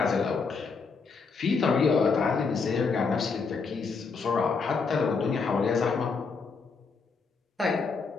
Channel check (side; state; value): right; quieter; 4.8 dB